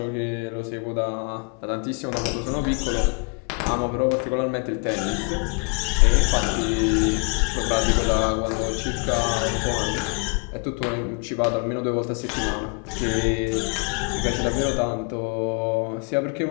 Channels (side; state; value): right; quieter; 37.4 dB